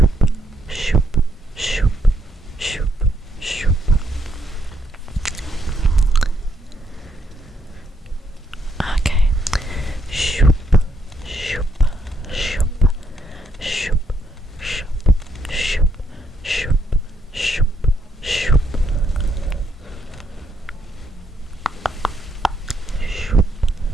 shoop, shoop, shoop, shoop. Okay. Shoop, shoop, shoop, shoop, shoop, shoop, shoop, shoop, shoop. Shoop,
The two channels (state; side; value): normal; both; correlation 0.75